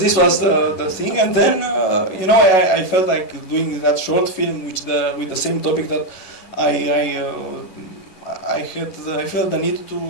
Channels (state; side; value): late; right; 11 ms